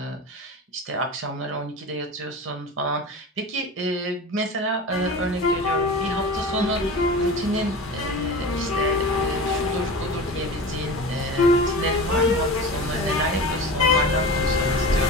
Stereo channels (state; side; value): normal; both; correlation 0.32